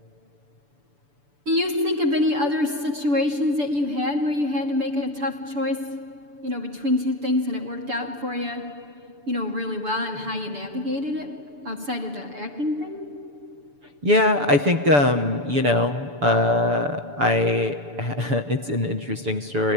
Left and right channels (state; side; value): late; left; 6.9 ms